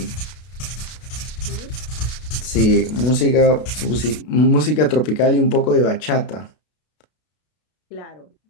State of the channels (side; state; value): right; late; 32 ms